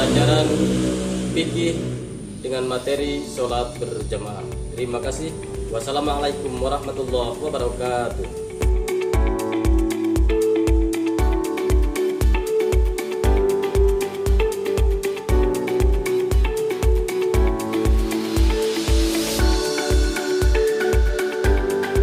fikih dengan materi sholat berjamaah. Terima kasih. Wassalamualaikum warahmatullahi wabarakatuh.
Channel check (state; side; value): identical; both; correlation 1.00